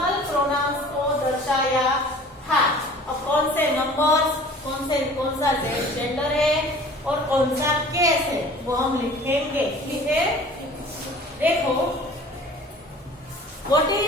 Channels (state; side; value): normal; both; correlation 0.46